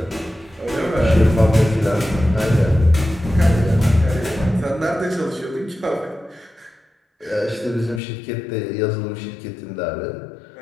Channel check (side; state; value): right; drops out; at 8.0 s